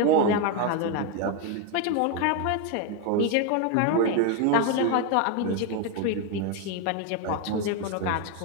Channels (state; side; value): different; both; correlation 0.02